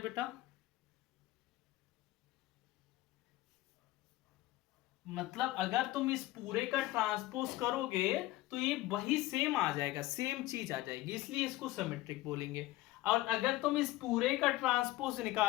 बेटा? मतलब अगर तुम इस पूरे का ट्रांसपोज करोगे तो ये वही सेम आ जाएगा, सेम चीज आ जाएगी, इसलिए इसको सिमेट्रिक बोलेंगे। और अगर तुम इस पूरे का ट्रांसपोज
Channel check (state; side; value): quieter; right; 17.5 dB